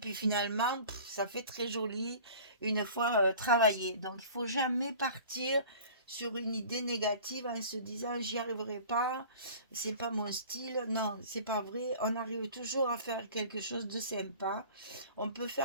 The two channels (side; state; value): both; inverted; correlation -0.44